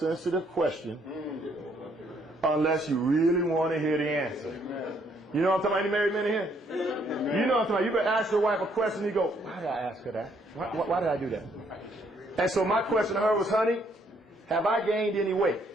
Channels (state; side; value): normal; both; correlation 0.69